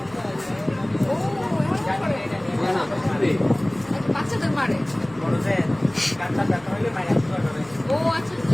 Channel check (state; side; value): noise; left; hum, 26 dB below the sound